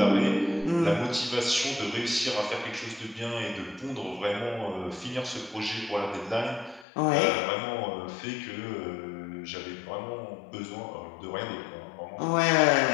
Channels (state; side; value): drops out; right; at 6.9 s